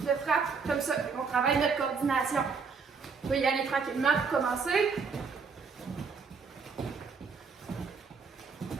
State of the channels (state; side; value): quieter; left; 5.2 dB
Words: frappe comme ça. On travaille notre coordination. On va y aller tranquillement pour commencer.